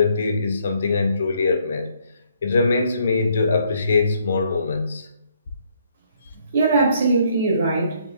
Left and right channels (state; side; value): inverted; both; correlation -0.69